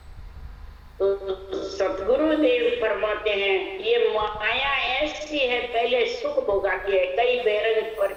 तो सतगुरुदेव फरमाते हैं ये माया ऐसी है पहले सुख भोगाती है, कई बेरंग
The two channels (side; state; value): both; identical; correlation 1.00